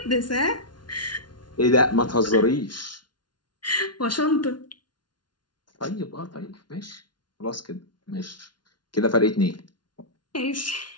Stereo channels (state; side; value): late; right; 0.70 ms